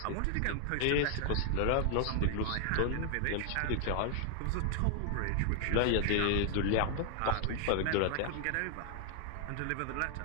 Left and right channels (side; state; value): both; different; correlation 0.00